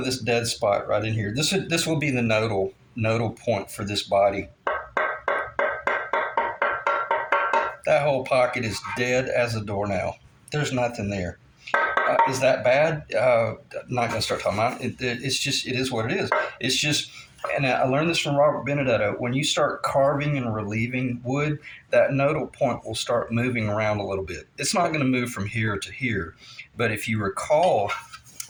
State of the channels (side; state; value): both; identical; correlation 1.00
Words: this dead spot right in here. This will be the nodal point for this body. That whole pocket is dead as a doornail. There's nothing there. Is that bad? Not going to start talking about it. It's just, it is what it is. It's just, and I learned this from Robert Benedetto. When you start carving and relieving wood, that nodal point will start moving around a little bit. It's not going to move from here to here, but if you recall,